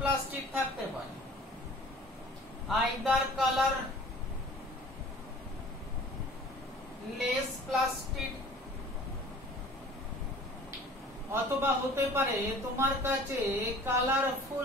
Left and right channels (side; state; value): both; normal; correlation 0.47